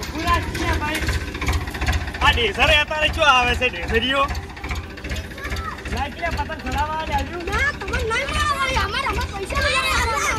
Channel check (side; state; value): both; identical; correlation 1.00